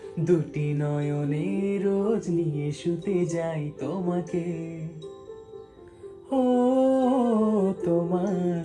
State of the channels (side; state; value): both; identical; correlation 1.00